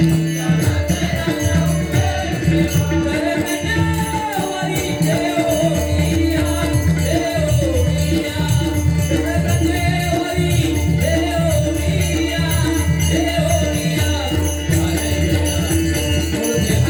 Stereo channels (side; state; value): both; identical; correlation 1.00